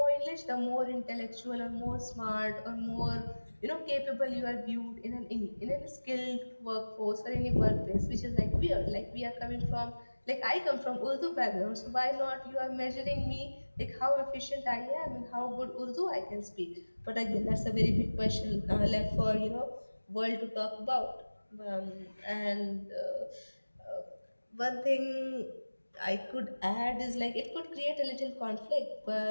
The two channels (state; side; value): inverted; both; correlation -1.00